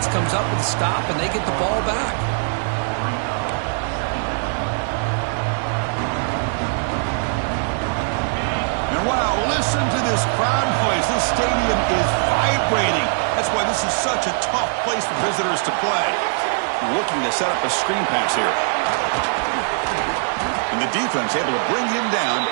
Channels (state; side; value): silent; left; 64 dB below the other